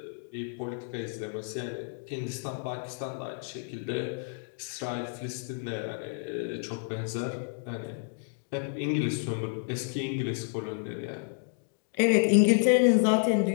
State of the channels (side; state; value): right; silent; digital silence